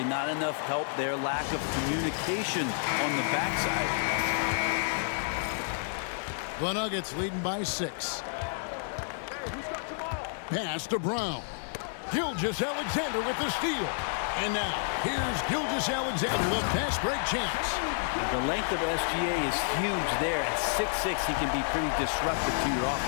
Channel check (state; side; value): silent; right; digital silence